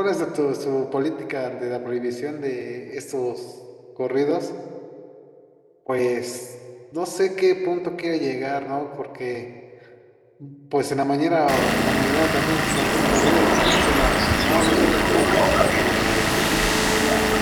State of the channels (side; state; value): both; identical; correlation 1.00